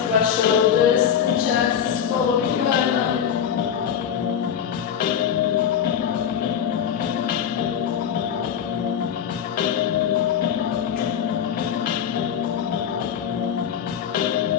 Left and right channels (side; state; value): right; quieter; 8.6 dB